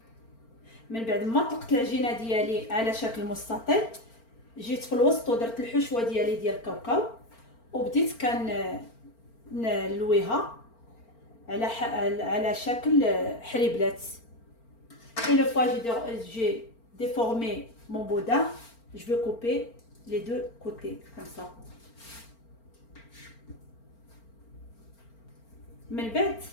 من بعد ما طلقت العجينه ديالي على شكل مستطيل، جيت في الوسط ودرت الحشوه ديالي ديال الكاوكاو وبديت نلويها على شكل حريبلات. Une fois j'ai déformé mon boudin, je vais couper les 2 côtés comme ça. من بعد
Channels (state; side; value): late; right; 4.4 ms